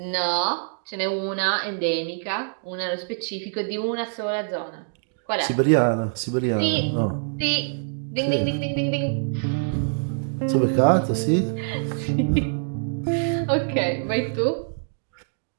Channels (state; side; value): silent; left; digital silence